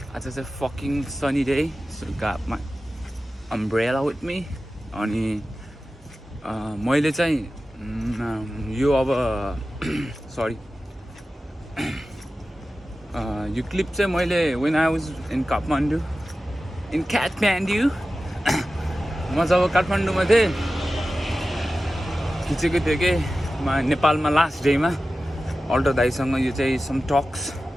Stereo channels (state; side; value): normal; both; correlation 0.94